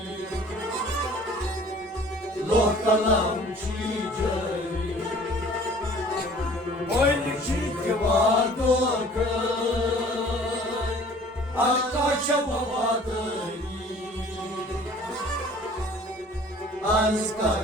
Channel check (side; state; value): both; normal; correlation 0.50